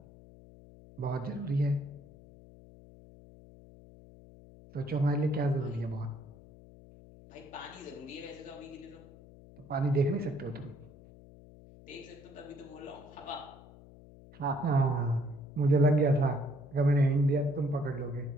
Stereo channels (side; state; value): left; noise; hum, 21 dB below the sound